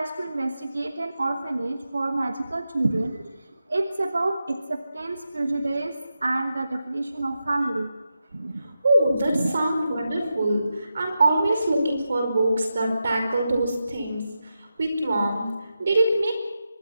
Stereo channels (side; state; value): both; inverted; correlation -0.89